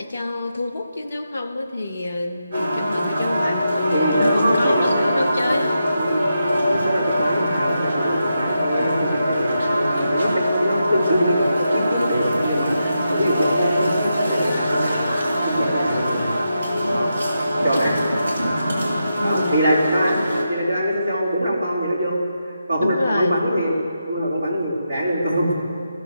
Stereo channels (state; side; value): inverted; both; correlation -0.86